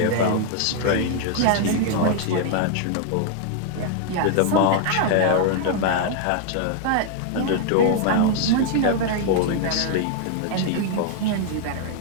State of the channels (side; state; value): both; different; correlation 0.00